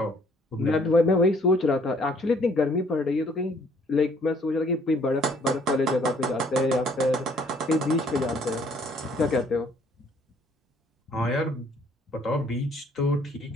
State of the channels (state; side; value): normal; both; correlation 0.62